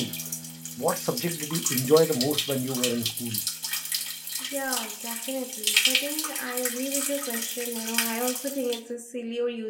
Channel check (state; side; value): identical; both; correlation 1.00